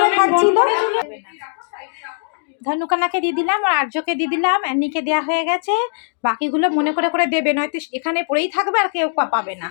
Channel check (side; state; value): right; silent; digital silence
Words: খাচ্ছিল। ধনুকানাকে দিয়ে দিলাম আর আর্যকে দিয়ে দিলাম, অ্যানিকে দেওয়া হয়ে গেছে। বাকিগুলো মনে করে করে দেবে, নয়তো এখানে পড়েই থাকবে আর কেউ পাবে না।